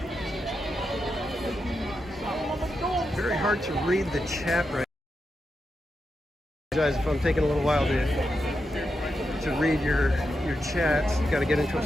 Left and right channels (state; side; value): normal; both; correlation 0.86